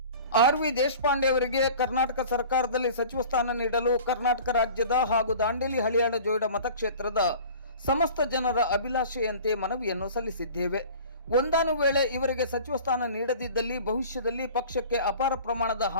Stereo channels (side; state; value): both; inverted; correlation -0.42